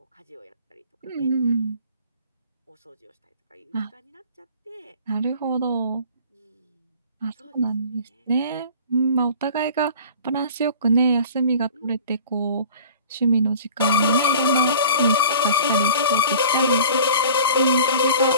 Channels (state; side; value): inverted; both; correlation -0.43